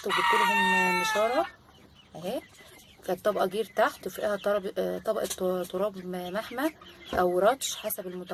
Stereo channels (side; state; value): both; identical; correlation 1.00